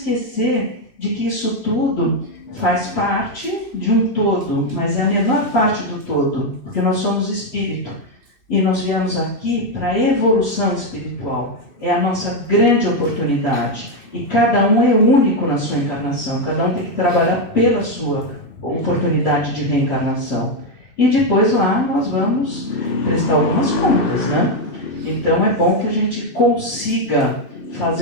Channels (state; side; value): late; right; 2.6 ms